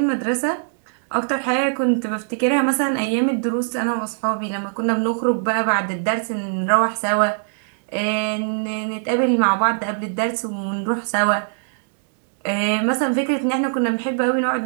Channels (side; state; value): left; silent; digital silence